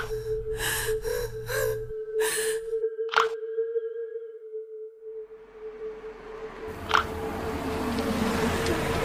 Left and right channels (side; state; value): both; identical; correlation 1.00